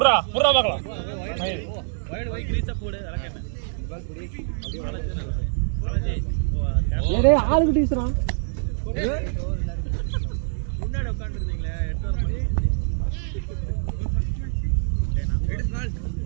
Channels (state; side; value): silent; left; digital silence